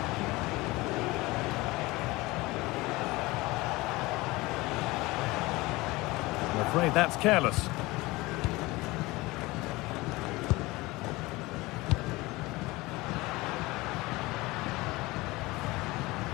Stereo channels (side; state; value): right; quieter; 21.3 dB